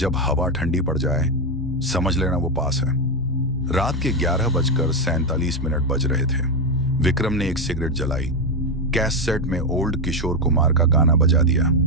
हवा ठंडी पड़ जाए समझ लेना वो पास है। रात के 11:47 बज रहे थे। विक्रम ने एक सिगरेट जलाई, कैसेट में ओल्ड किशोर कुमार का गाना बजा दिया।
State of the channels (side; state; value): both; normal; correlation 0.07